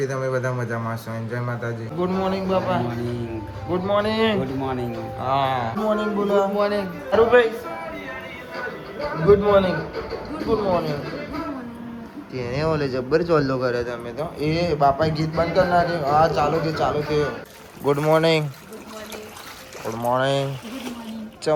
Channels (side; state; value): both; identical; correlation 1.00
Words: તમે બધા મજામાં છો જય માતાજી ગુડ મોર્નિંગ બાપા ગુડ મોર્નિંગ હા ગુડ મોર્નિંગ બોલો good morning Arubhai good morning તેને ઓલે જબ્બર ચોલ્લો કરે તમે તો એ બાપા ગીત બંધ કર નાખે હા ચાલુ કે ગુડ મોર્નિંગ